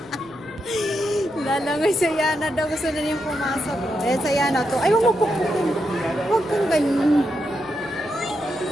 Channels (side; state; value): left; noise; rumble, 30 dB below the sound